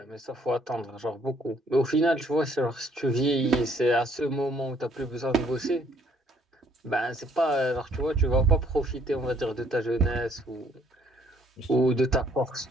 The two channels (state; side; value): normal; both; correlation 0.64